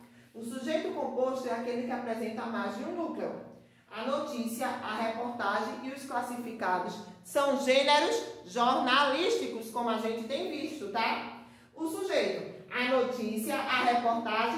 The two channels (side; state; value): both; identical; correlation 1.00